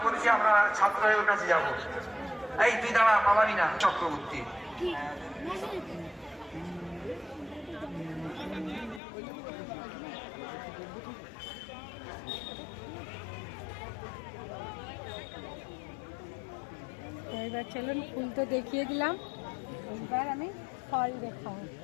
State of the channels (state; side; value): drops out; right; at 9.0 s